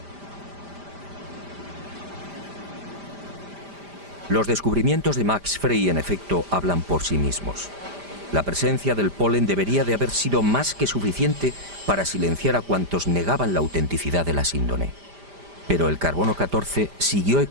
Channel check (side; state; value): left; late; 5.0 ms